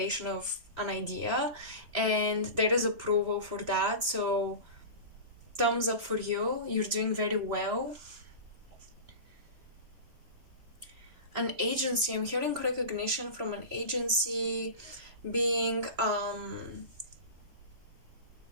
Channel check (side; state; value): left; late; 3.0 ms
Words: of an idea, and there is approval for that. So thumbs up for you, you're doing very well. An agency, I'm hearing recognition from an agency, being